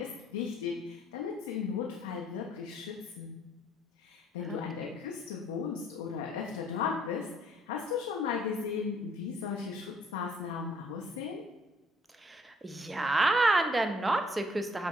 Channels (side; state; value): both; normal; correlation 0.62